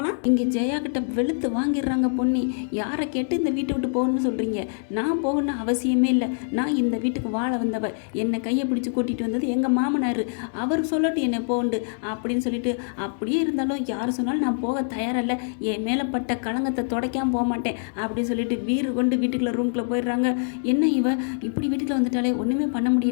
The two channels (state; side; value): silent; right; digital silence